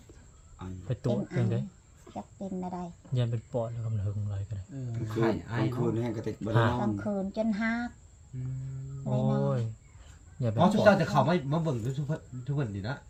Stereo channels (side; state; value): both; identical; correlation 1.00